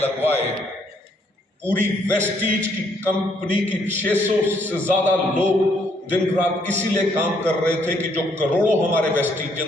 पूरी वेस्टीज की कंपनी की 600 से ज्यादा लोग दिन रात इसीलिए काम कर रहे थे कि जो करोड़ों हमारे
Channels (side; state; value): both; normal; correlation 0.69